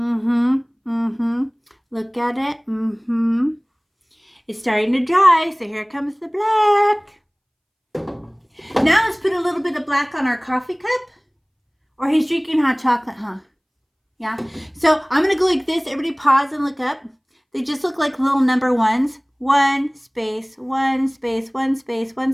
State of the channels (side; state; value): both; identical; correlation 1.00